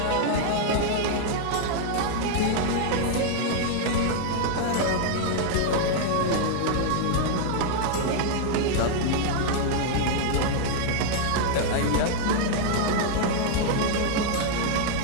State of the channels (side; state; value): both; different; correlation 0.00